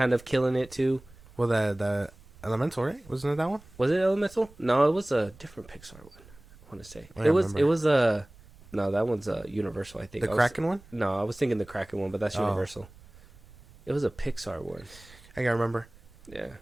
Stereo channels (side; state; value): right; noise; rumble, 23 dB below the sound